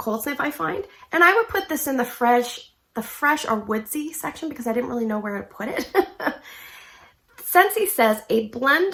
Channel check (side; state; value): both; identical; correlation 1.00